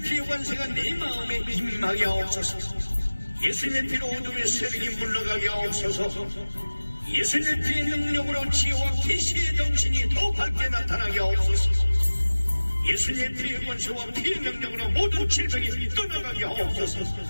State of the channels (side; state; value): both; inverted; correlation -1.00